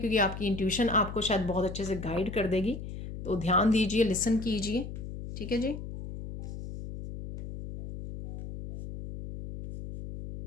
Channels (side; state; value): left; noise; hum, 9 dB below the sound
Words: आपकी इंट्यूशन आपको शायद बहुत अच्छे से गाइड कर देगी। तो ध्यान दीजिए, लिसन कीजिए, ठीक है जी।